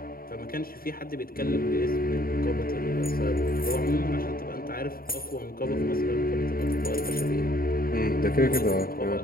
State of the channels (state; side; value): late; right; 0.43 ms